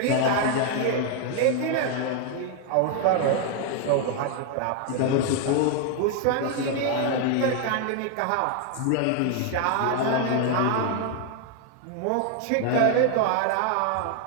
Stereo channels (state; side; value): different; both; correlation 0.00